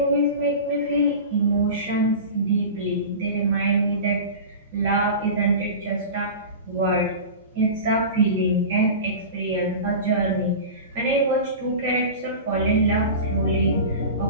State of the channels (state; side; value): inverted; both; correlation -0.32